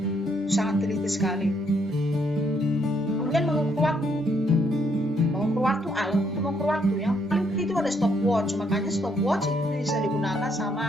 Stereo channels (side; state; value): both; normal; correlation 0.72